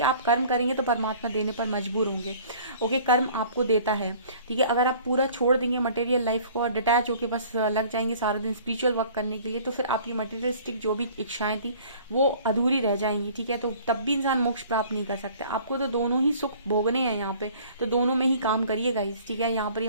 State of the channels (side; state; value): both; inverted; correlation -0.51